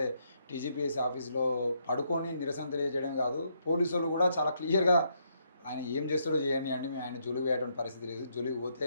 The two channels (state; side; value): inverted; both; correlation -0.75